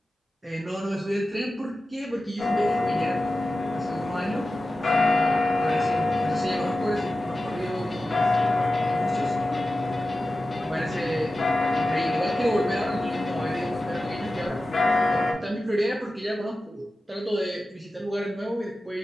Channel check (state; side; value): normal; both; correlation 0.94